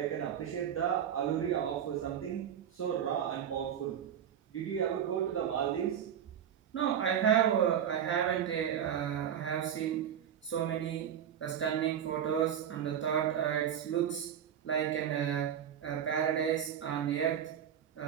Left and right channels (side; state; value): left; quieter; 9.2 dB